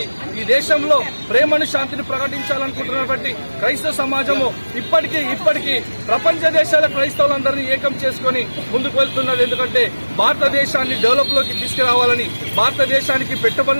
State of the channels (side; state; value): both; inverted; correlation -1.00